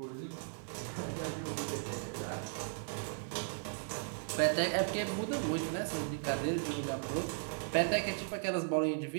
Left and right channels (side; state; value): left; silent; digital silence